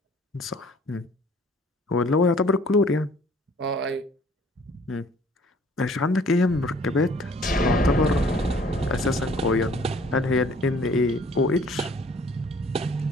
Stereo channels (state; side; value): normal; both; correlation 0.55